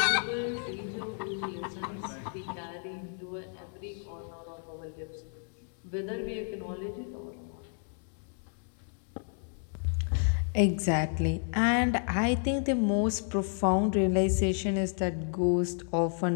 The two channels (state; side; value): silent; right; 57 dB below the other